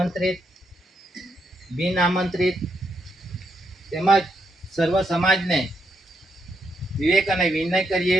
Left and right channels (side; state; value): both; normal; correlation 0.79